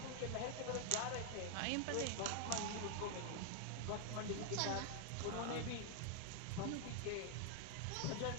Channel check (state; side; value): different; both; correlation 0.00